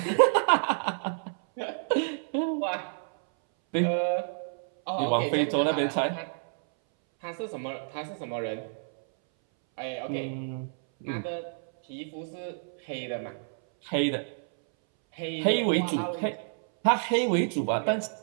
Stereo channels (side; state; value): left; silent; 59 dB below the other